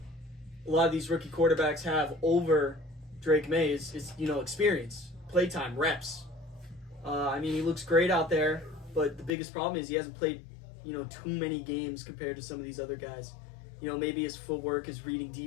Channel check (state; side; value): drops out; right; at 9.3 s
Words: a lot of these rookie quarterbacks have over Drake Maye is experience, playtime, reps. He looks great out there, but the biggest problem is he hasn't played, too many games compared to some of these other guys. Maybe his footwork, his reading